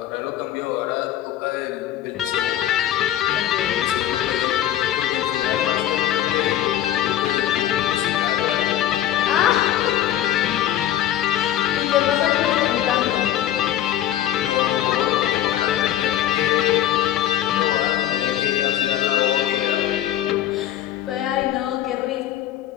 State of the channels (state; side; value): quieter; right; 12.1 dB